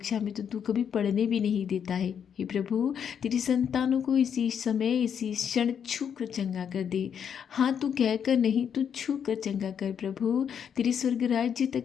में तो तू कभी पढ़ने भी नहीं देता है। हे प्रभु, तेरी संतानों को इसी समय, इसी क्षण छू कर चंगा कर दे। हाँ, तू कहकर नहीं, तू छू कर चंगा कर प्रभु। तेरे स्वर्ग राज्य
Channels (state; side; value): quieter; right; 8.0 dB